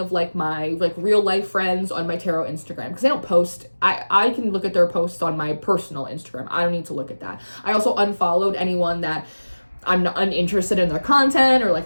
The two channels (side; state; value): both; inverted; correlation -1.00